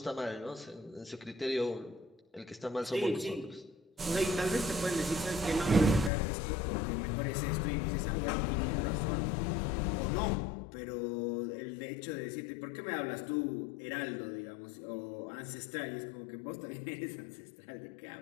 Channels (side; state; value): right; drops out; at 6.1 s